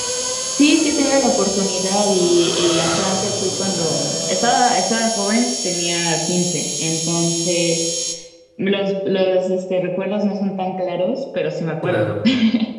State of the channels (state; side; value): identical; both; correlation 1.00